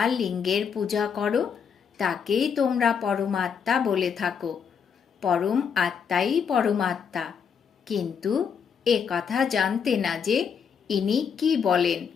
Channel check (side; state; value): right; quieter; 6.8 dB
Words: লিঙ্গের পূজা করো, তাকেই তোমরা পরমাত্মা বলে থাকো। পরম আত্মাই পরমাত্মা। কিন্তু এ কথা জানতে না যে ইনি কি বলেন।